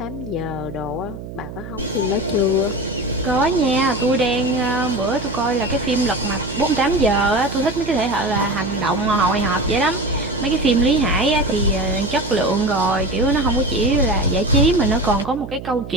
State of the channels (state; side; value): noise; right; hum, 11 dB below the sound